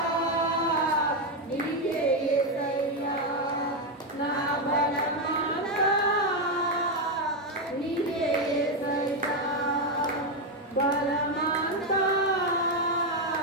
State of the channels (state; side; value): normal; both; correlation 0.06